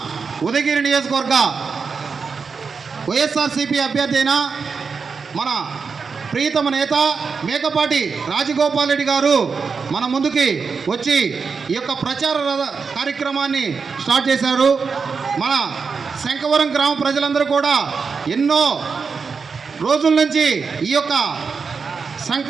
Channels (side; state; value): left; quieter; 5.3 dB